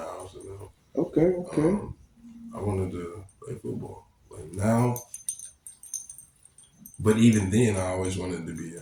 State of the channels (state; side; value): identical; both; correlation 1.00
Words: Okay. I wanted to play football. Like now, but even then, I always wanted to be